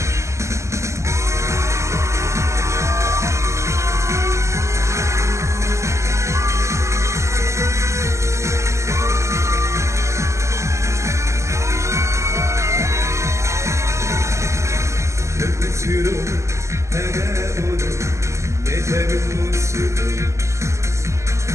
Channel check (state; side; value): late; left; 0.14 ms